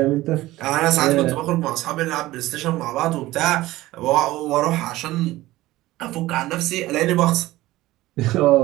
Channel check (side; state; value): left; quieter; 17.3 dB